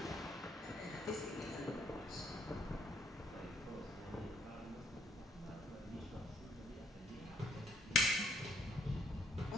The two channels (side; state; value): both; normal; correlation 0.66